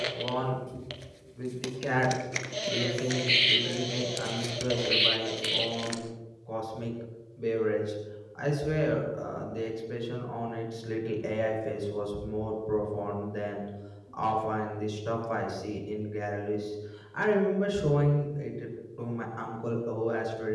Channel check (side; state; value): both; identical; correlation 1.00